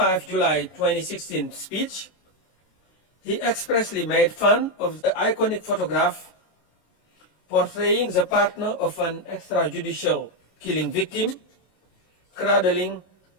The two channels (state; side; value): late; right; 26 ms